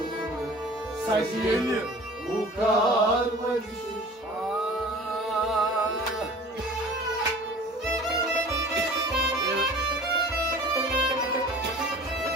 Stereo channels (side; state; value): both; normal; correlation 0.44